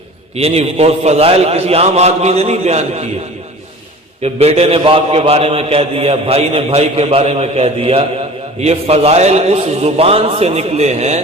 یعنی وہ فضائل کسی عام آدمی نے نہیں بیان کیے کہ بیٹے نے باپ کے بارے میں کہہ دیا، بھائی نے بھائی کے بارے میں کہہ دیا۔ یہ فضائل اس زبان سے نکلے ہیں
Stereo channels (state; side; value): normal; both; correlation 0.41